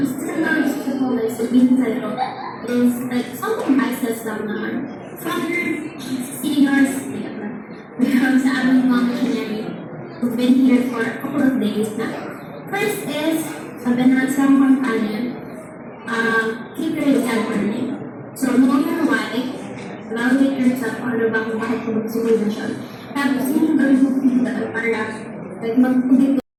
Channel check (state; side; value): identical; both; correlation 1.00